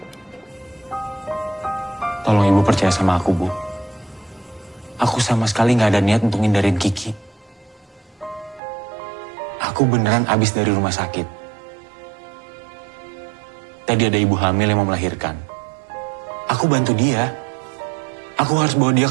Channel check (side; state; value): left; drops out; at 8.6 s